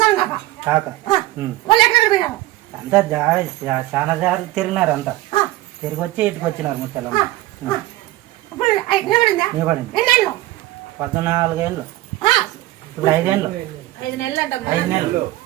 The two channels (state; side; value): quieter; left; 16.9 dB